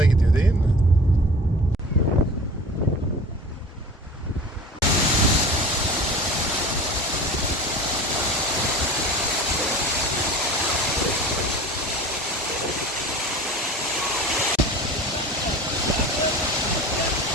gidiyor değil mi?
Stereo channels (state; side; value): normal; both; correlation 0.39